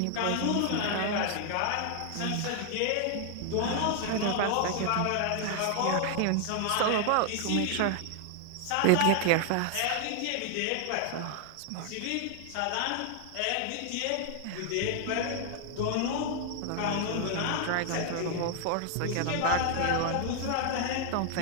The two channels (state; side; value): different; both; correlation 0.00